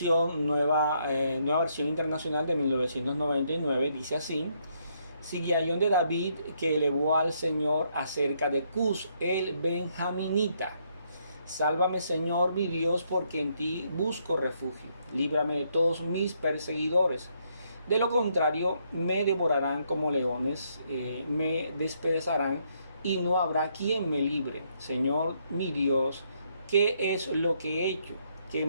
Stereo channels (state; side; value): inverted; both; correlation -0.73